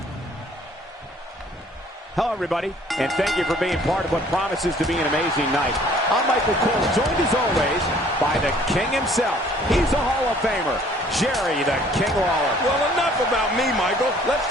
Hello, everybody, and thank you for being part of what promises to be an amazing night. I'm Michael Cole, joined as always by the King himself. He's a Hall of Famer, Jerry the King Lawler. Well, enough about me, Michael. Let's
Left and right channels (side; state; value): both; normal; correlation 0.56